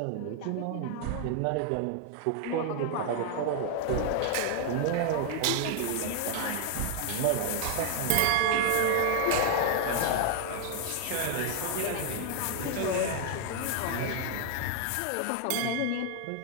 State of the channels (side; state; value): both; different; correlation 0.00